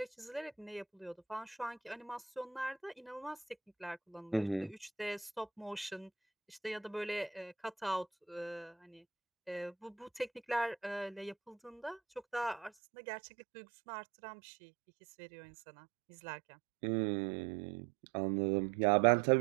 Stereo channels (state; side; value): drops out; left; at 12.7 s